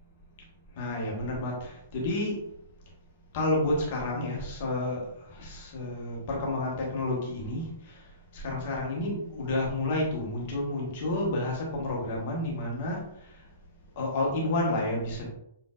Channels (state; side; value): inverted; both; correlation -0.37